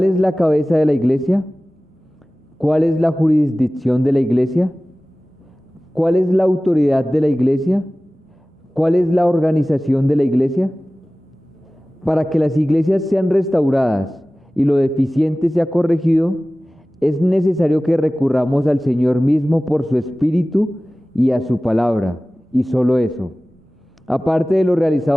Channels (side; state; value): both; normal; correlation 0.97